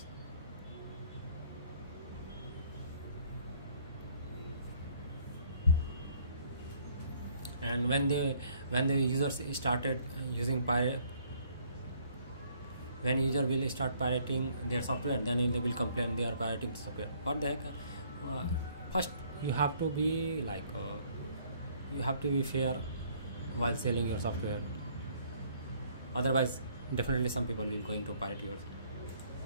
And when the users started using pirate, when user will start pirating their software, then they will complain they are pirating the software. What the heck? First you have to be like you have to be fair while selling your software, otherwise definitely some people will going to pirate yours.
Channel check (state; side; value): inverted; both; correlation -0.62